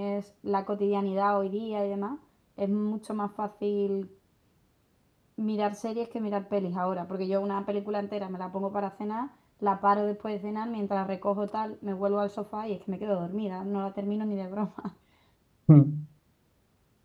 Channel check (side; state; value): both; identical; correlation 1.00